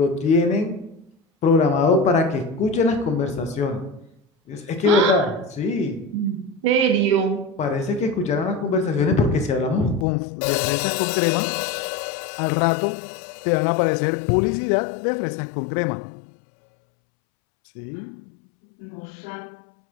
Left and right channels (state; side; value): drops out; right; at 10.1 s